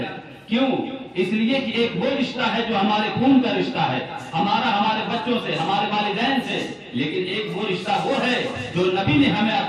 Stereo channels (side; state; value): both; identical; correlation 1.00